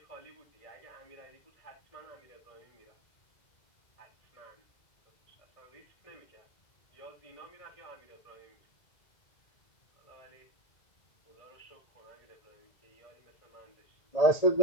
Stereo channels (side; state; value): right; late; 2.0 ms